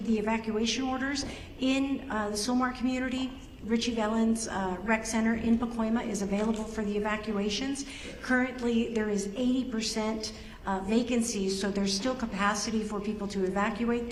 the evacuation orders. In the Sylmar community, Richie Valens Rec Center in Pacoima is available for the evacuations. Currently, there is 80% vacancies, so there's still capacity for people to evacuate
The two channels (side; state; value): both; identical; correlation 1.00